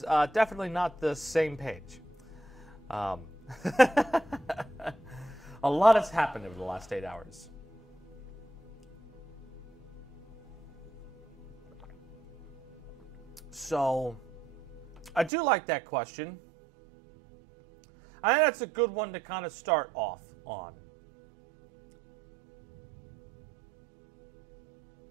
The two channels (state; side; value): drops out; left; at 15.3 s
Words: definitely not the same page. A lot has happened over the last 8 hours. So, I do like that question. I think that's a good one to kind of start off on.